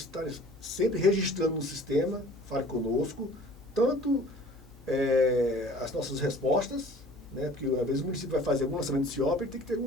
estarem sempre registrando no sistema, Fale Conosco, tanto as nossas respostas, né, porque às vezes o município vai fazer algum lançamento do CIOP, ele tem que ter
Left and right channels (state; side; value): normal; both; correlation 0.49